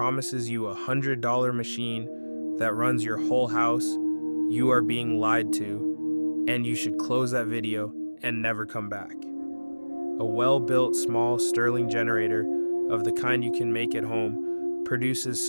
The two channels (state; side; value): inverted; both; correlation -1.00